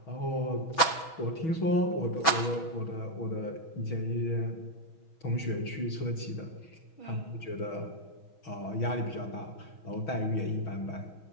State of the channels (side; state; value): right; late; 6.1 ms